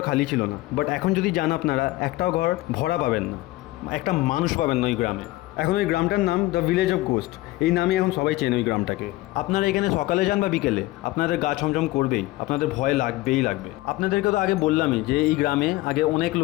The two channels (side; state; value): right; quieter; 18.6 dB